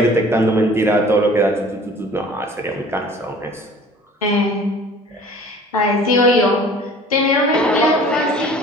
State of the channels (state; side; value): normal; both; correlation 0.47